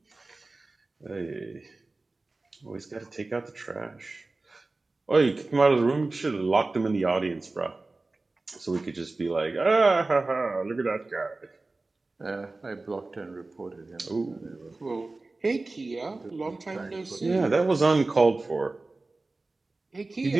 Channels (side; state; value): left; quieter; 3.3 dB